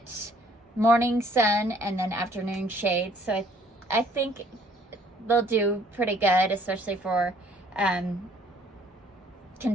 morning sun and then afternoon shade. So I think they'll do pretty good, especially for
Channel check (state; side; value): normal; both; correlation 0.60